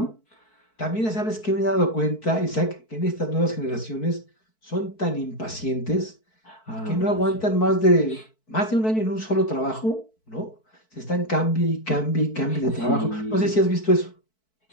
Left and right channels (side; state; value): right; late; 4.6 ms